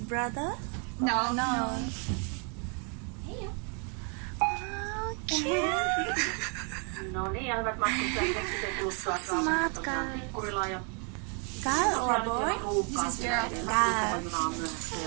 No. Oh, cute. No niin, ja hyvät matkustajat, keksitään kuluttua Smart Tikkurilla ja Girl or boy? This is girl. Girl. junaa myöhässä.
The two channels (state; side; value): quieter; left; 38.5 dB